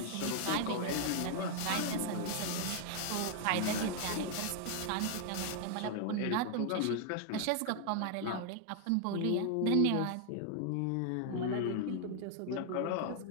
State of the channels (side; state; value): both; different; correlation 0.00